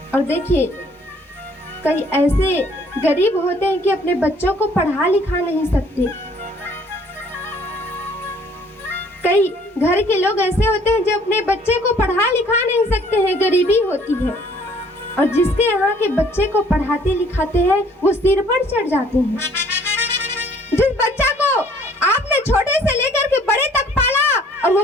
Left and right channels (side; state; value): both; normal; correlation 0.58